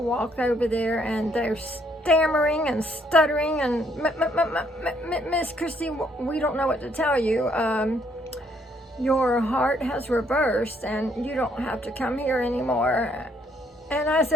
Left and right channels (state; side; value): normal; both; correlation 0.68